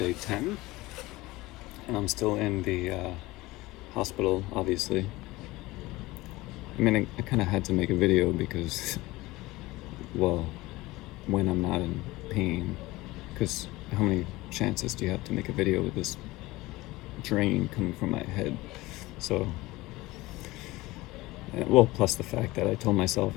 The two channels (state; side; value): quieter; right; 19.9 dB